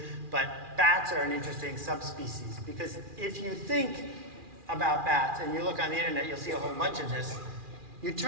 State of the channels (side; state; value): left; late; 2.4 ms